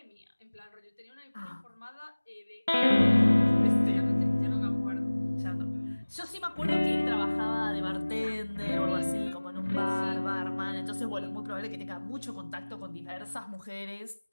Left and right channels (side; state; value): both; inverted; correlation -1.00